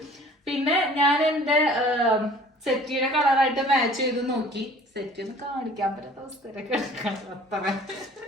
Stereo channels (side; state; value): both; normal; correlation 0.50